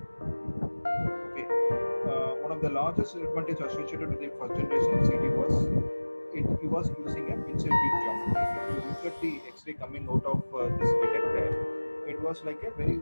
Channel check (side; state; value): both; inverted; correlation -1.00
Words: Okay, one of the largest advantage associated with the first generation CT was it was using a pencil beam geometry. If you look at the X-ray coming out of this detector, it was like a very